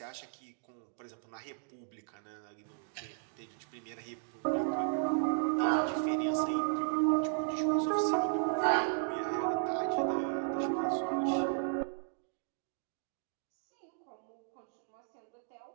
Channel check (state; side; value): silent; left; digital silence